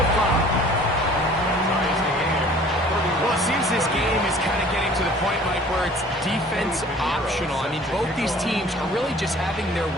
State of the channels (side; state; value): both; normal; correlation 0.50